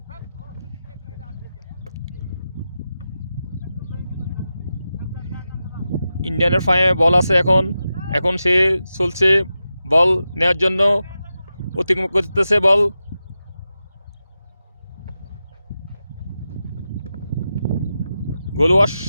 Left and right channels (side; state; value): both; inverted; correlation -0.91